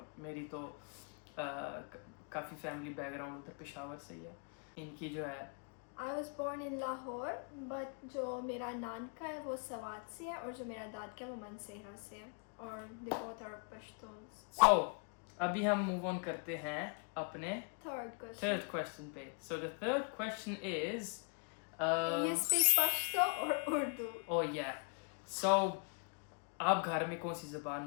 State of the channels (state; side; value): quieter; right; 39.5 dB